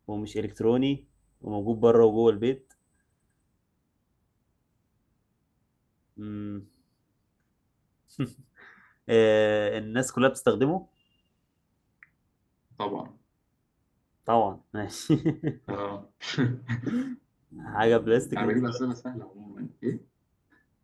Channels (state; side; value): identical; both; correlation 1.00